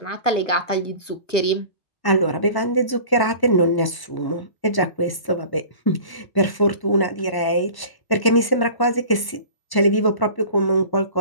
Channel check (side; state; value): right; late; 1.0 ms